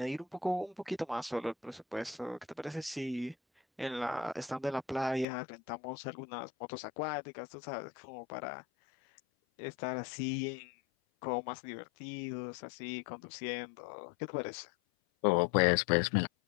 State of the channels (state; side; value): drops out; right; at 5.2 s